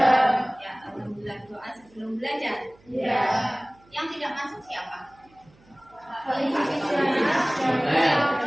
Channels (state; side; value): noise; right; hum, 30 dB below the sound